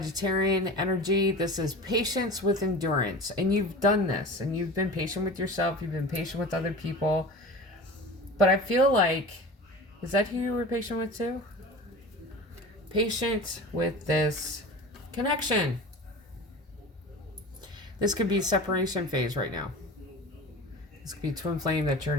energy. This is patience with endurance. And you've done this. And you've been patient with yourself. You've been patient with other people. But I feel like, is that who you were patient with, too? Patient with this connection. This could be separation phase right now. This could be twin flame that you're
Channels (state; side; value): normal; both; correlation 0.35